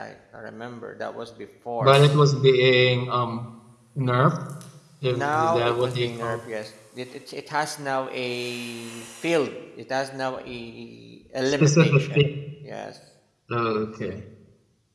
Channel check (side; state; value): both; identical; correlation 1.00